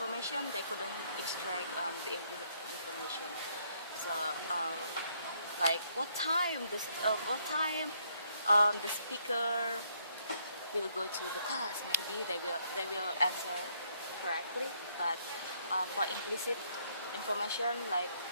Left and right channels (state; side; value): inverted; both; correlation -0.70